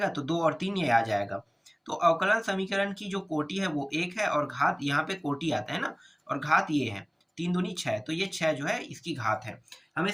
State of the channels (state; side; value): identical; both; correlation 1.00